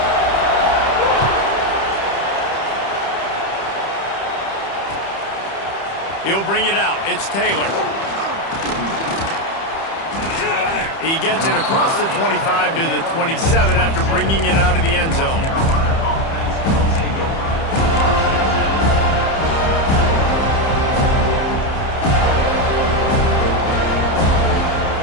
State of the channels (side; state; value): right; late; 30 ms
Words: He'll bring it out. It's Taylor. He gets it across the 25 to the 27 after bringing it out of the end zone.